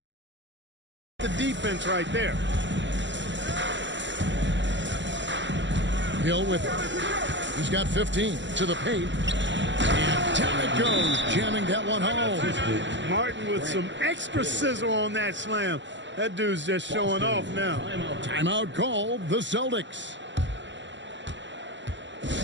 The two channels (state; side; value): late; left; 0.53 ms